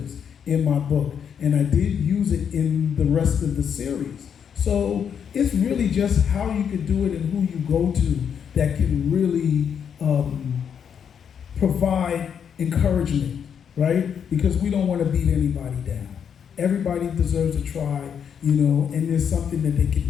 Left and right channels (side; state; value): right; quieter; 7.7 dB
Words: in my book, and I did use it in the rest of the series. So it's really just how you can do it and who you go to that can really provide encouragement, right? Because we don't want to beat anybody down. Everybody deserves a try, and there's something that they can